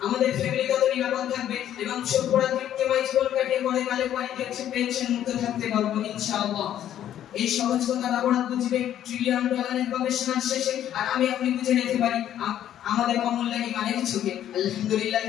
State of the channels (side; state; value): right; quieter; 11.1 dB